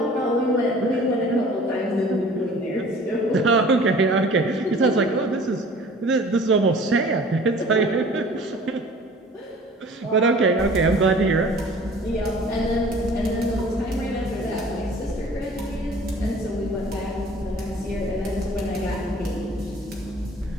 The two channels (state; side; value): normal; both; correlation 0.47